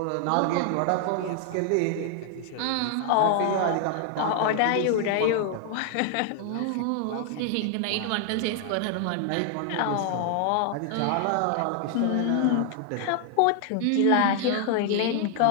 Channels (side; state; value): both; different; correlation 0.00